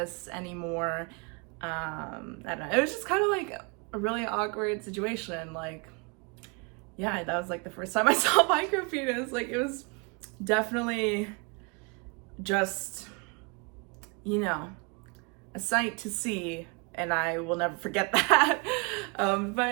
anymore. I don't know. It was just kind of like a really awkward situation. Like, yeah, that was like the first time I saw micropenis. Like, it was definitely just, you know, a sight to see, and I will never forget that.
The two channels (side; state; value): left; quieter; 32.3 dB